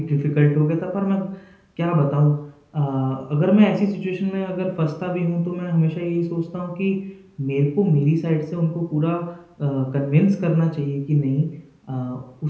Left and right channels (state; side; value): identical; both; correlation 1.00